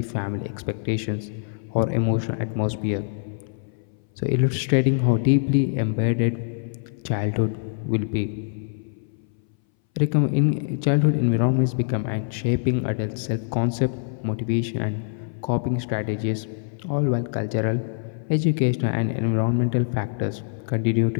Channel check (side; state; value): right; silent; 60 dB below the other